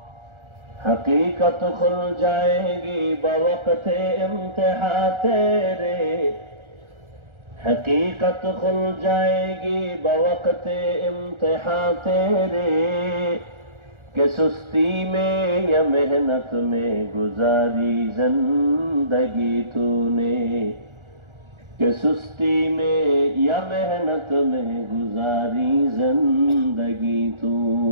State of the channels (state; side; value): late; left; 1.4 ms